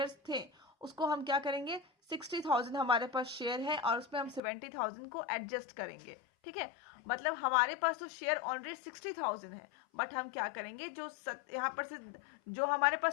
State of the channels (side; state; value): right; drops out; at 4.4 s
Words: थे उसको हम क्या करेंगे, 60,000 हमारे पास शेयर है और उसमें हम 70,000 को एडजस्ट करेंगे. ठीक है, मतलब हमारे पास तो शेयर ऑलरेडी 60,000 है, बट हम क्या करेंगे, जो यहाँ पर से जो हमारे